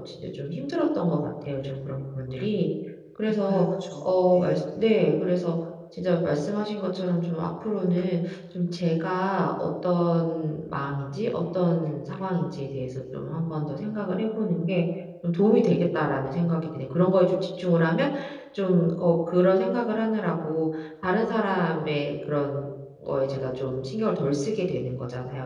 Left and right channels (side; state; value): both; identical; correlation 1.00